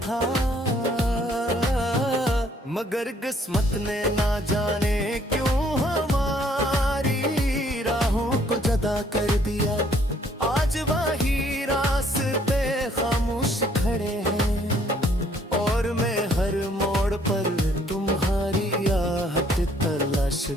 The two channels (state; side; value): normal; both; correlation 0.63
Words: था। मगर किस्मत ने ना जाने क्यों हमारी राहों को जुदा कर दिया। आज वही रास्ते खामोश खड़े हैं और मैं हर मोड़ पर तुम्हारी आहट तलाश